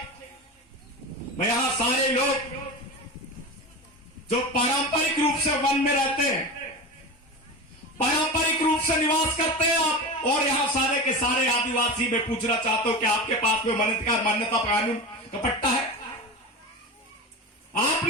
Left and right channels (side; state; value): both; normal; correlation 0.26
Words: में यहां सारे लोग जो पारंपरिक रूप से वन में रहते हैं, पारंपरिक रूप से निवास करते हैं आप, और यहां सारे के सारे आदिवासी में पूछना चाहता हूं कि आपके पास में वन अधिकार मान्यता कानून का पट्टा है?